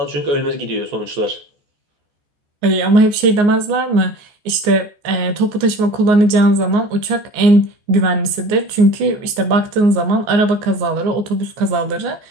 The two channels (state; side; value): late; left; 14 ms